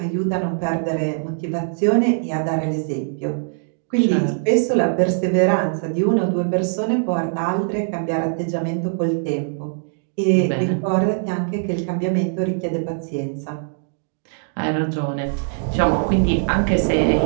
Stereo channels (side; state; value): left; silent; digital silence